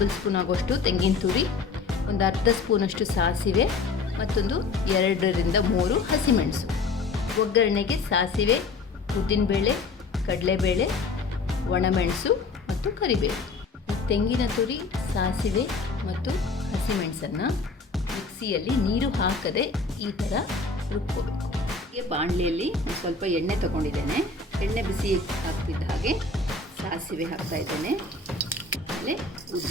ಸ್ಪೂನ್ ಆಗೋಷ್ಟು ತೆಂಗಿನ ತುರಿ, ಒಂದು ಅರ್ಧ ಸ್ಪೂನಷ್ಟು ಸಾಸಿವೆ, ಮತ್ತೊಂದು 2 ರಿಂದ 3 ಹಸಿಮೆಣಸು. ಒಗ್ಗರಣೆಗೆ ಸಾಸಿವೆ, ಉದ್ದಿನಬೇಳೆ, ಕಡಲೆಬೇಳೆ, ಒಣಮೆಣಸು ಮತ್ತು ಕರಿಬೇವು. ತೆಂಗಿನ ತುರಿ, ಸಾಸಿವೆ ಮತ್ತು ಹಸಿಮೆಣಸನ್ನು ಮಿಕ್ಸಿಯಲ್ಲಿ ನೀರು ಹಾಕದೆ ಈ ಥರ ರುಬ್ಕೋಬೇಕು. ಹೀಗೆ ಬಾಣಲೆಯಲ್ಲಿ ಒಂದು ಸ್ವಲ್ಪ ಎಣ್ಣೆ ತಗೊಂಡಿದ್ದೇನೆ. ಎಣ್ಣೆ ಬಿಸಿ ಆಗ್ತಿದ್ದ ಹಾಗೆ ಸಾಸಿವೆ ಹಾಕ್ತಾಯಿದ್ದೇನೆ. ಆಮೇಲೆ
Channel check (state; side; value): quieter; right; 4.1 dB